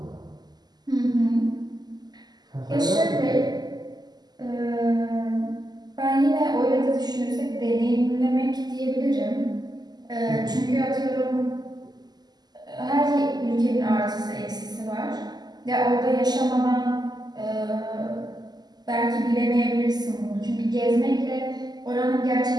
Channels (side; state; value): left; late; 0.20 ms